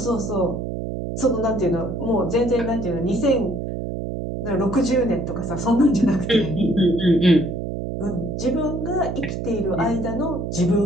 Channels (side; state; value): right; noise; hum, 4 dB below the sound